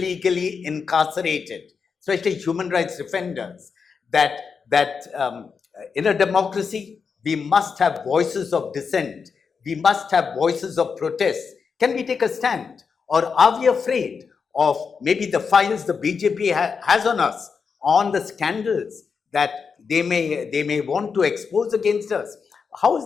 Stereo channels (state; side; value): quieter; right; 5.7 dB